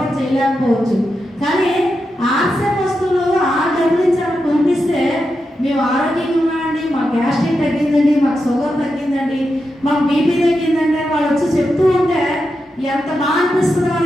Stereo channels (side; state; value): both; normal; correlation 0.87